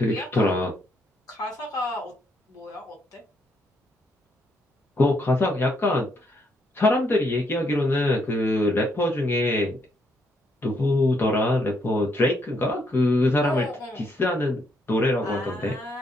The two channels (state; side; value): normal; both; correlation 0.74